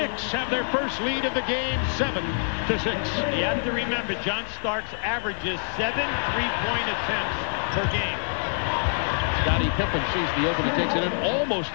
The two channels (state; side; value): silent; right; digital silence